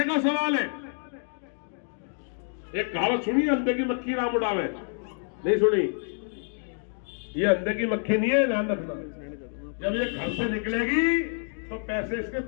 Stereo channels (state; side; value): silent; right; 56 dB below the other